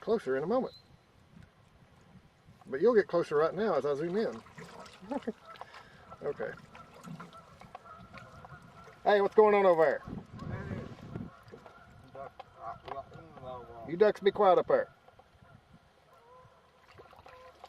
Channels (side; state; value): both; identical; correlation 1.00